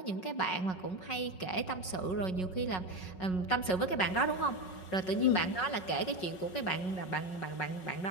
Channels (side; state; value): right; late; 5.4 ms